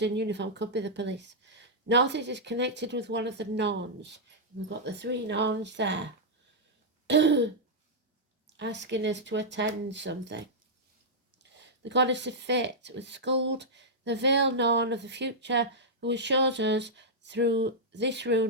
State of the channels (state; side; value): normal; both; correlation -0.08